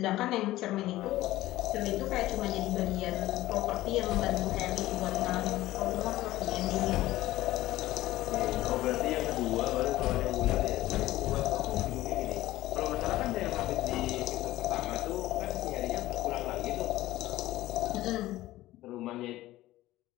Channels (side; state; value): right; quieter; 16.3 dB